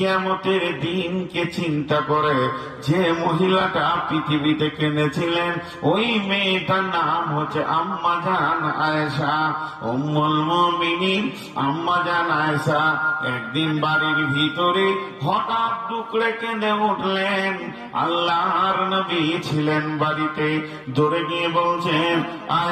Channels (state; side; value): identical; both; correlation 1.00